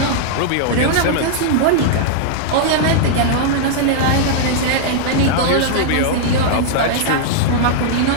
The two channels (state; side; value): different; both; correlation -0.01